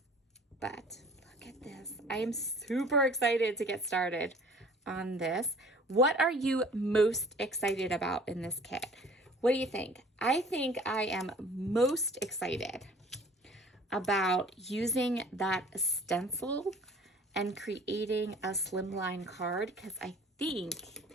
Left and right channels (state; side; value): normal; both; correlation 0.49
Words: But look at this. I am super excited to get started on this. What are you most excited about in this kit? What do you think? I think I am most excited about using that stencil and creating a slimline card, because I think,